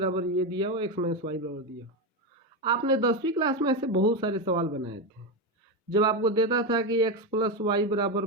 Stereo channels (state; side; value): normal; both; correlation 0.12